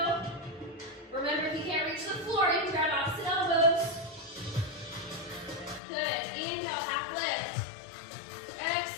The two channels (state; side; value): drops out; right; at 5.8 s